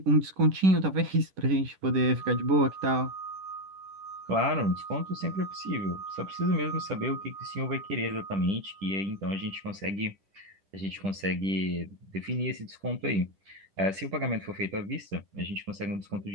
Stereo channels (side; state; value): left; late; 10 ms